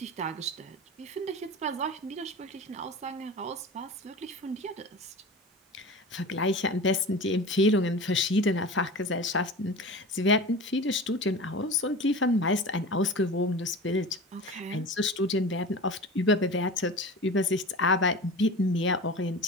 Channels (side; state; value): both; normal; correlation 0.33